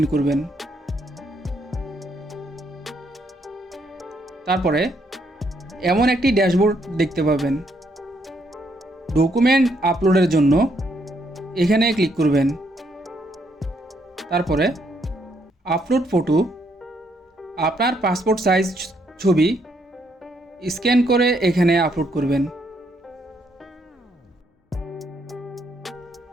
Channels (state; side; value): normal; both; correlation 0.73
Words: করবেন। তারপরে এমন একটি ড্যাশবোর্ড দেখতে পাবেন। ডকুমেন্ট আপলোডের জন্য এখানে ক্লিক করবেন। তারপরে আপলোড ফটো, আপনার পাসপোর্ট সাইজ ছবি স্ক্যান করে এখানে আপলোড করবেন।